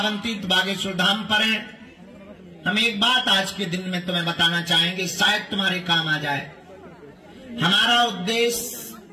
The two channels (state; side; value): identical; both; correlation 1.00